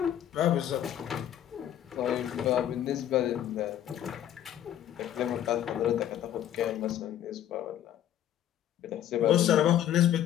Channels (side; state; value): right; quieter; 11.1 dB